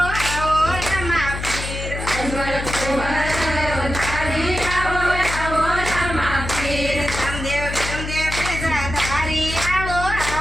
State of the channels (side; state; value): left; noise; hum, 6 dB below the sound